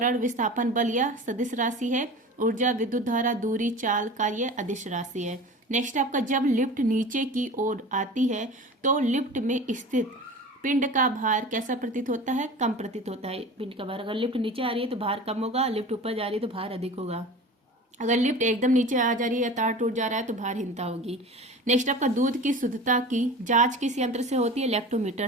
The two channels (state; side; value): normal; both; correlation 0.36